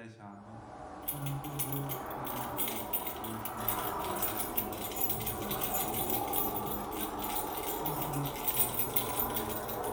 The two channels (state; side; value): identical; both; correlation 1.00